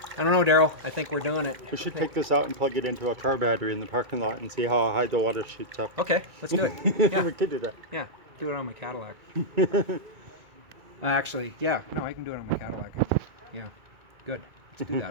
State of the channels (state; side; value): late; left; 2.3 ms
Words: I don't know, Daryl. I think we're doing it. We should take this out and plug it into a car battery in the parking lot and see how high the water shoots up. Okay, let's do it. We could do that. Yeah, do it on my Cadillac. Actually, no, I can do it on my Cadillac. Yeah, good. Let's do